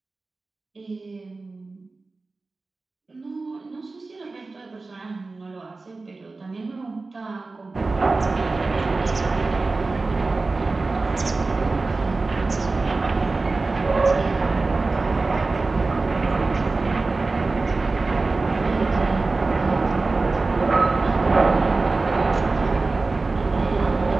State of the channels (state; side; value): quieter; left; 3.6 dB